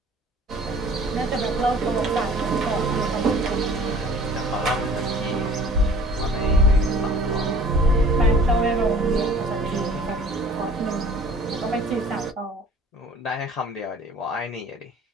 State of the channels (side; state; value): both; normal; correlation 0.49